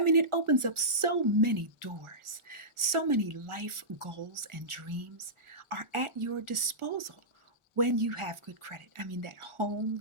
mean, it opens up so many doors. So many life goals and dreams are at your disposal when you have good credit. I mean, that home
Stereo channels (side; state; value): left; late; 1.4 ms